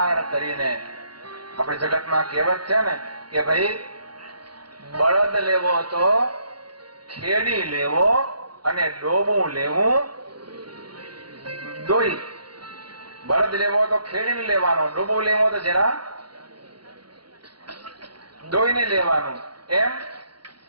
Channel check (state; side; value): late; left; 0.71 ms